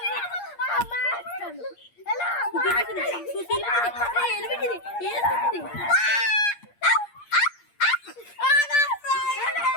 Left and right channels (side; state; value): right; late; 8.6 ms